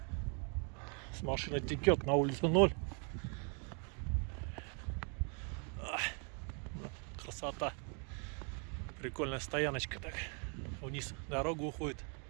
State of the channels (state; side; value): quieter; left; 38.3 dB